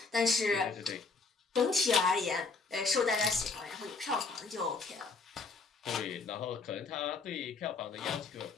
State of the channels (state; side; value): quieter; right; 4.3 dB